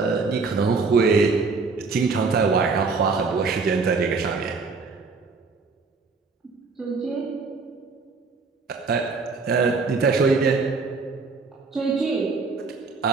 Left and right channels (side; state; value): left; quieter; 4.4 dB